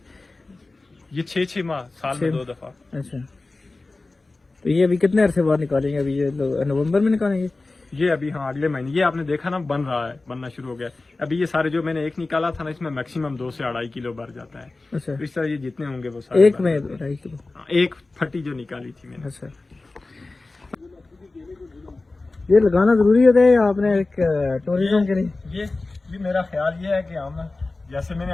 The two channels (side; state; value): right; quieter; 3.3 dB